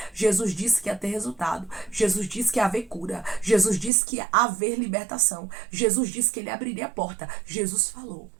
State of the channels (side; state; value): left; drops out; at 3.9 s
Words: Jesus disse que ia ter resultado. Jesus disse que ia haver cura. Jesus disse que ia haver libertação. Jesus disse que ele abriria a porta. Jesus falou.